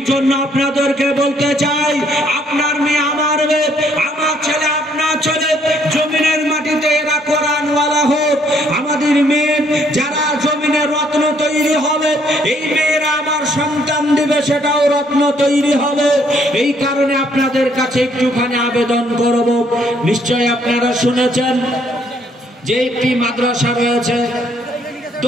জন্য আপনাদেরকে বলতে চাই, আপনার মেয়ে আমার মেয়ে, আমার ছেলে আপনার ছেলে, জমিনের মাটিতে এরা কোরআনওয়ালা হোক। আমাদের মেয়ে যারা জমিনের রত্ন তৈরি হবে, এই মেয়েরা আমার সন্তান দিবে, সেটাও রত্ন তৈরি হবে। এই কারণে আপনাদের কাছে একটুখানি আবেদন করব। নিশ্চয় আপনারা শুনেছেন যে একটি মাদ্রাসা রয়েছে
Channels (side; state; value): both; normal; correlation 0.67